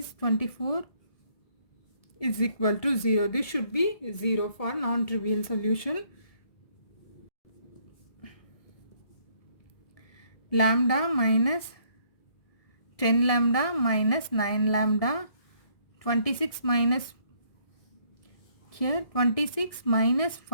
24 is equal to 0. This should be 0 for non-trivial solution. Lambda minus 10 lambda minus 9 lambda, 26 minus here 26 minus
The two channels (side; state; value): right; late; 1.7 ms